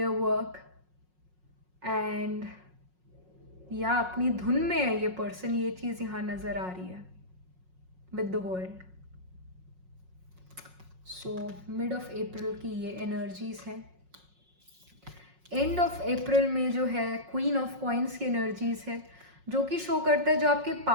work, and या अपनी धुन में है ये person. ये चीज़ यहाँ नज़र आ रही है with the world. So mid of April की ये energies हैं. एंड ऑफ अप्रैल में जो है क्वीन ऑफ कॉइन्स की एनर्जीज है, जो कि शो करता है जो आपके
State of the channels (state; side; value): late; left; 5.5 ms